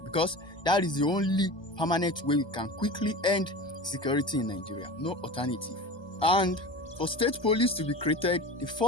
because that is the only permanent way we can quickly end security in Nigeria. No alternative. And for state police to be created, the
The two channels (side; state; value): right; late; 1.2 ms